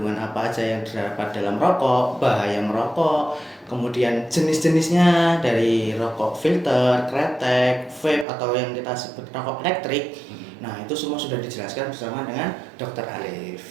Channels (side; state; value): left; drops out; at 8.2 s